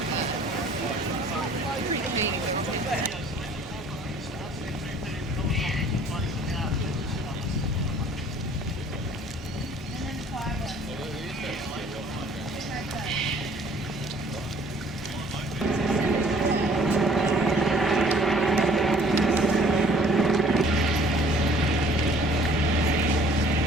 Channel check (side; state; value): both; normal; correlation 0.55